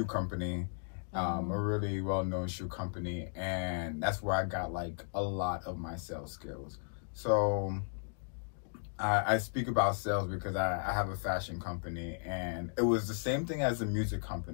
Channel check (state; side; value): silent; right; digital silence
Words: company, a really well-known shoe company, and that's where I got like a lot of my sales skills. So I speak about sales because I have a fashion company, and it was the same thing as a music